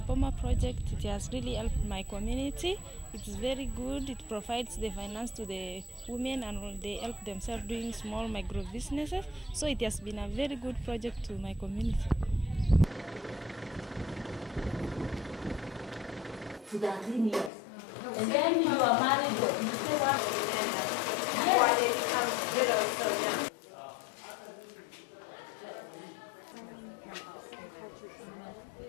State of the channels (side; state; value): right; drops out; at 17.5 s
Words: Boma project, it has really helped my community. It's very good. It provides the finance to the women and they help themselves doing small micro businesses. So it has been a very good project to my community. To 13 years. And then you are married, you say what? When they become widows so young.